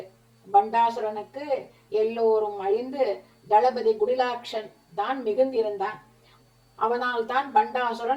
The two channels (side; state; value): both; identical; correlation 1.00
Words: பண்டாசுரனுக்கு எல்லோரும் அழிந்து தளபதி குடிலாட்சன் தான் மிகுந்திருந்தான். அவனால் தான்